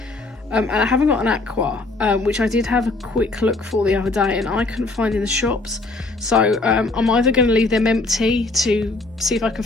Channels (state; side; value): quieter; right; 3.3 dB